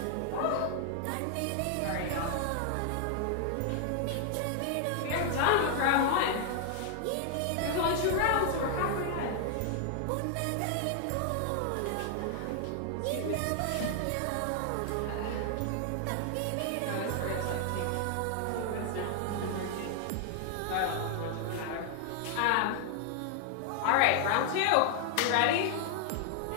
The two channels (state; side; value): different; both; correlation 0.00